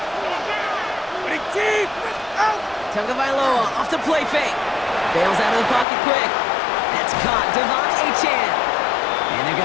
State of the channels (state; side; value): drops out; right; at 5.9 s